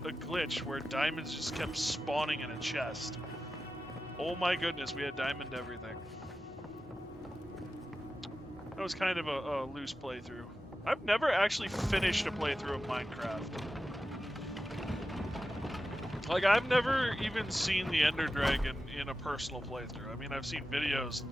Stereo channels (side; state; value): both; normal; correlation 0.92